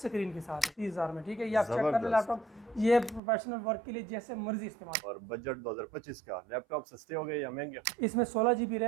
के साथ 30,000 में। ठीक है, ये आप चेक कर ले लैपटॉप, ये प्रोफेशनल वर्क के लिए जैसे मर्जी इस्तेमाल। और बजट 2025 का लैपटॉप सस्ते हो गए या महंगे? इसमें 16 GB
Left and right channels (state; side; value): drops out; left; at 3.2 s